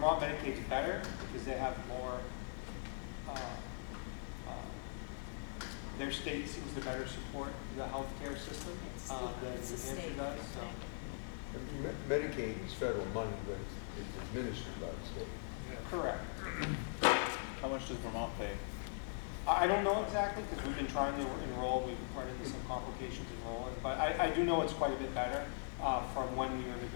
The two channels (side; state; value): right; silent; digital silence